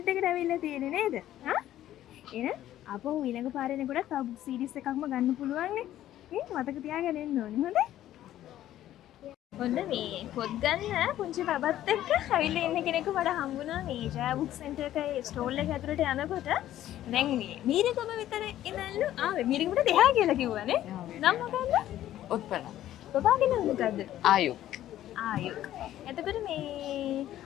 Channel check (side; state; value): right; quieter; 12.9 dB